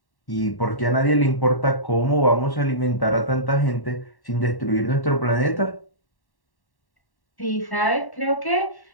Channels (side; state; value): right; late; 1.1 ms